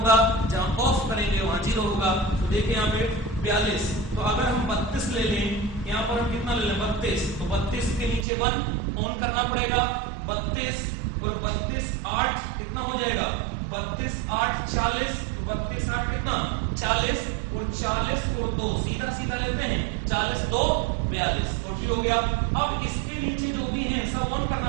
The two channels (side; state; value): left; drops out; at 8.2 s